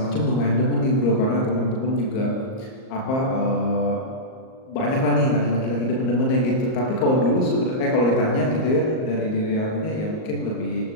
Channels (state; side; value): late; right; 38 ms